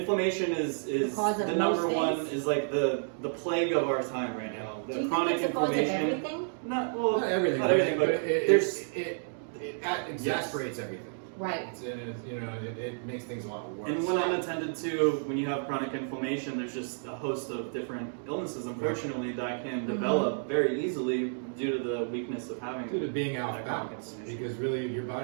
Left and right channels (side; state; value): left; silent; digital silence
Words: is the number one, is like the plague of our time right now. The Do you chronic think it's the cause of inflammation. everything? Not everything. Not everything, but it exasperates everything. Right. It makes things a lot worse. And when unattended to, when you have chronic inflammation, there's just a host of different illnesses, unfortunately, that can develop very easily due to the weakness of having. Due to being off balance, because really your